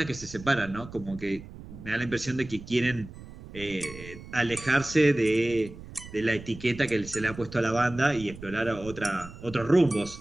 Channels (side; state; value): right; noise; rumble, 15 dB below the sound